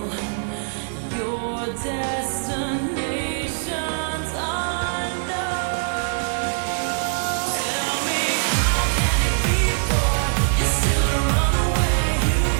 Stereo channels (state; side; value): silent; left; digital silence